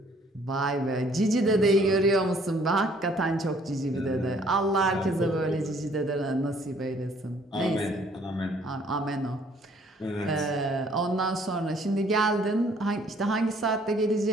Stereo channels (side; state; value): both; normal; correlation 0.60